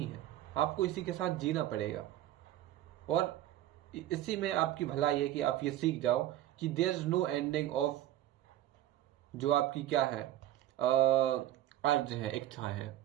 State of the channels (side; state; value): left; quieter; 13.4 dB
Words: है, आपको इसी के साथ जीना पड़ेगा। और इसी में आपकी भलाई है कि आप ये सीख जाओ कि there is no ending of जो आपकी क्या है, अर्ज है, इच्छा है,